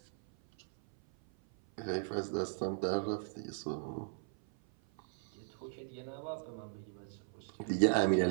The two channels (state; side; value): silent; left; 53 dB below the other